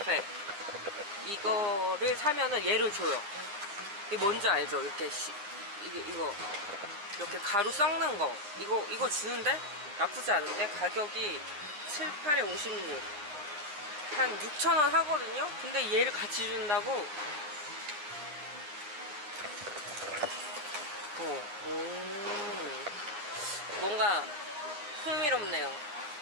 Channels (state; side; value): late; left; 9.9 ms